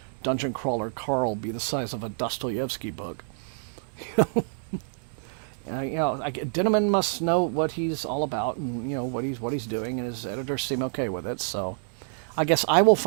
Dungeon Crawler Carl be the size of a Dostoevsky book? Dinneman must know what he's all about and what he's doing, and his editors seem okay with it, so. I guess I will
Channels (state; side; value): silent; left; digital silence